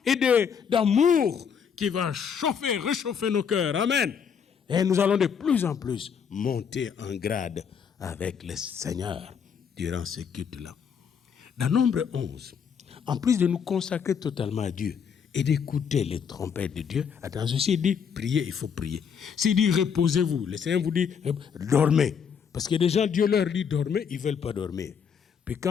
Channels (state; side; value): quieter; right; 7.0 dB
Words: et d'amour qui va réchauffer nos cœurs. Amen. Et nous allons de plus en plus monter en grade avec le Seigneur durant ce culte-là. Dans Nombre 11, en plus de nous consacrer totalement à Dieu et d'écouter les trompettes de Dieu, attention, s'il dit priez, il faut prier. S'il dit reposez-vous, le Seigneur vous dit dormez. Parce que déjà Dieu leur dit dormez, ils ne veulent pas dormir. Puis